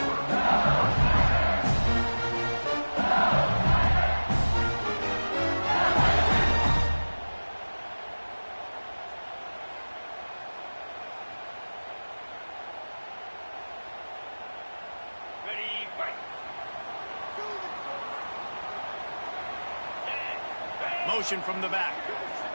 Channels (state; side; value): inverted; both; correlation -1.00